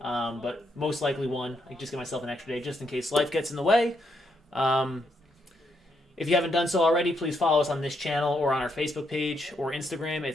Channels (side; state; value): both; normal; correlation 0.77